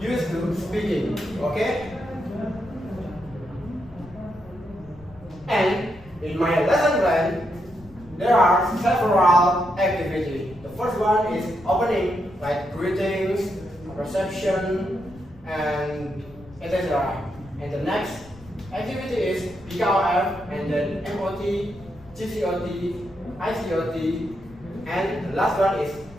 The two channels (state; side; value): noise; left; rumble, 22 dB below the sound